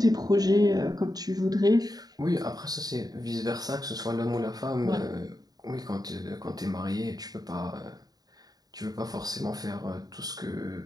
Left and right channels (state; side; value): late; left; 0.18 ms